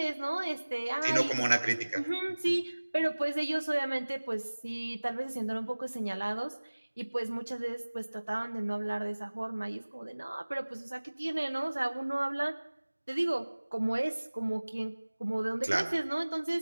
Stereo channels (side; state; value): both; inverted; correlation -1.00